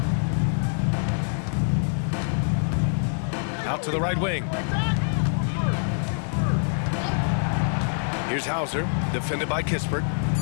Out to the right wing. Here's Hauser, defended by Kispert.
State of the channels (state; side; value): silent; right; digital silence